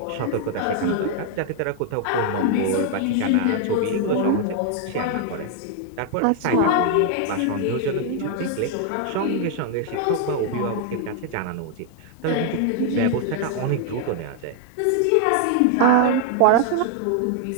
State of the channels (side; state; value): both; different; correlation 0.00